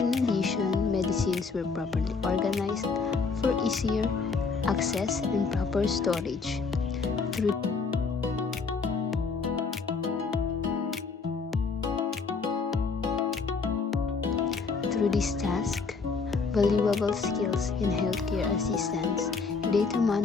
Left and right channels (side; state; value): right; quieter; 4.8 dB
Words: addition, medicines were properly organized for easier access and proper storage. Through this task, valuable skills in healthcare assistance, data